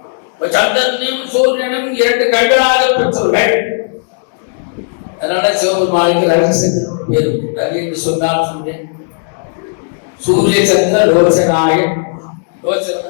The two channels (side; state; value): right; silent; digital silence